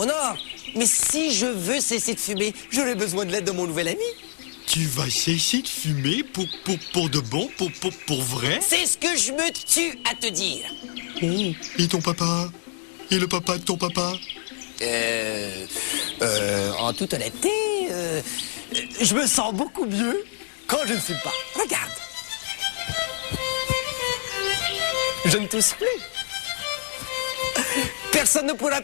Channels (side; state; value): right; silent; digital silence